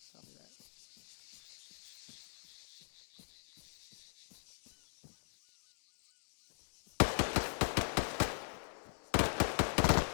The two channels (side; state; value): right; silent; digital silence